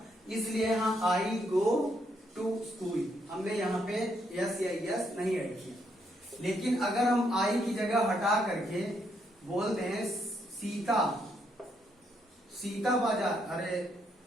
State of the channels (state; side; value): normal; both; correlation 0.75